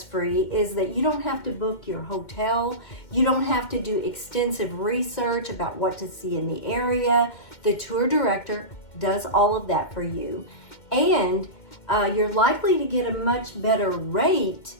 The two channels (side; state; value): right; late; 2.1 ms